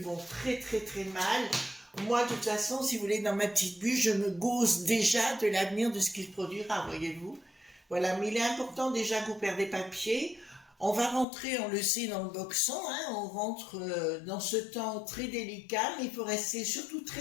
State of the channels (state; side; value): drops out; right; at 11.2 s